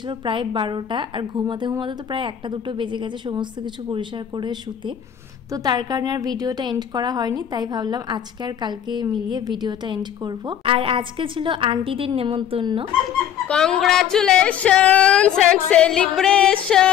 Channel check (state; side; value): quieter; right; 9.7 dB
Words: প্রায় 12টা, আর ঘুমাতে ঘুমাতে তো প্রায় 1-2 বেজে গেছে সমস্ত কিছু পরিষ্কার করে শুতে। তো তার কারণে আর ভিডিওটা এন্ড করা হয়নি, তাই ভাবলাম আজকে আর কালকে মিলিয়ে ভিডিওটা এন্ড করব। আর আজকে ছিল আন্টিদের নেমন্তন্ন। Congratulations and celebrations.